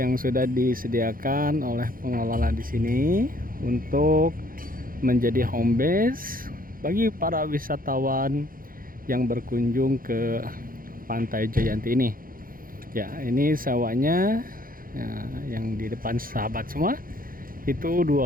sudah disediakan oleh pengelola di sini untuk menjadi home base bagi para wisatawan yang berkunjung ke Pantai Jayanti ini. Ya, ini sewanya ya, yang di depan sahabat semua itu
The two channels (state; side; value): late; left; 0.41 ms